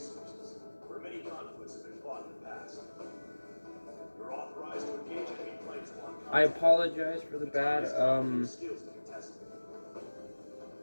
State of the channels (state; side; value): inverted; both; correlation -1.00